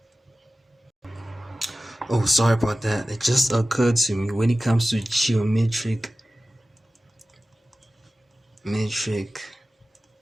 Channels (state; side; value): normal; both; correlation 0.96